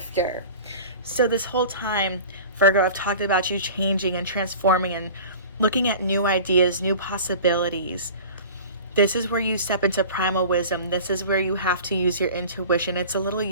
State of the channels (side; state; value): both; inverted; correlation -0.39